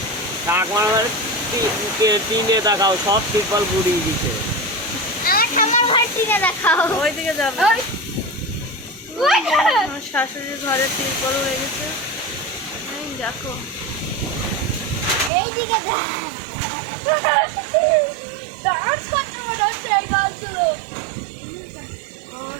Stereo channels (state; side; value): drops out; left; at 15.3 s